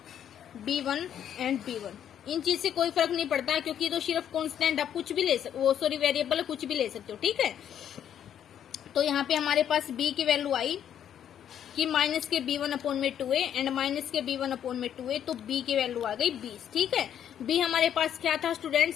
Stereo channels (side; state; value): right; quieter; 9.6 dB